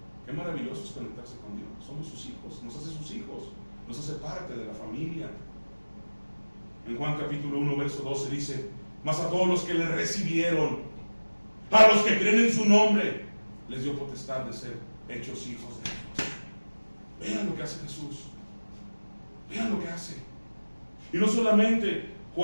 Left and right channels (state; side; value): inverted; both; correlation -1.00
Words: Qué maravilloso es conectarse con Dios. Somos sus hijos, nos hace sus hijos, nos hace parte de la familia. En Juan capítulo 1, verso 12 dice, mas a todos los que le recibieron, a los que creen en su nombre, les dio potestad de ser hechos hijos de Dios. Vean lo que hace Jesús. Vean lo que hace. Y no solamente